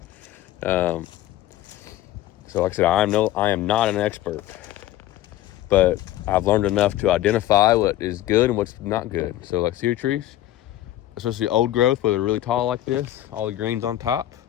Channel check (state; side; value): quieter; right; 14.1 dB